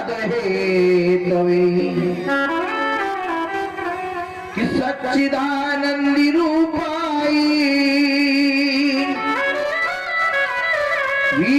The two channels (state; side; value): identical; both; correlation 1.00